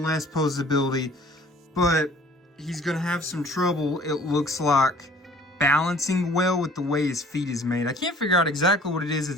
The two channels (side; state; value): both; normal; correlation 0.52